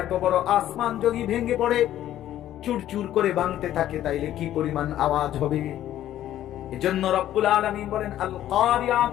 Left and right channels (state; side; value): quieter; right; 12.5 dB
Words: এত বড় আসমান যদি ভেঙে পড়ে, চুরচুর করে ভাঙতে থাকে, তাইলে কি পরিমাণ আওয়াজ হবে? এজন্য রব্বুল আলামিন বলেন আল